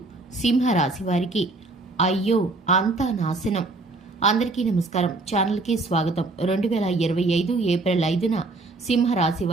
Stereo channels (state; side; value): quieter; left; 3.2 dB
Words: సింహరాశి వారికి అయ్యో అంతా నాశనం. అందరికీ నమస్కారం. ఛానల్కి స్వాగతం. 2025 ఏప్రిల్ 5న సింహరాశి